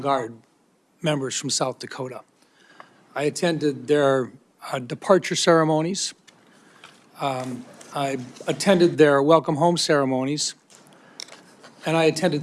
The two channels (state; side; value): identical; both; correlation 1.00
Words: members from South Dakota. I attended their departure ceremonies. I attended their welcome home ceremonies, and I